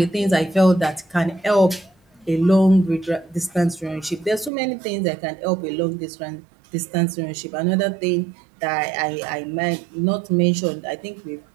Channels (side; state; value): left; drops out; at 4.5 s